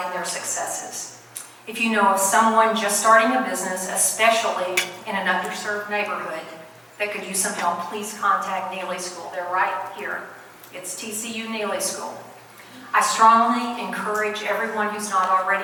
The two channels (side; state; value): both; identical; correlation 1.00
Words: in their successes. If you know of someone just starting a business, especially in an underserved neighborhood, that could use some help, please contact Neely School. They're right here. It's TCU Neely School. I strongly encourage everyone who's not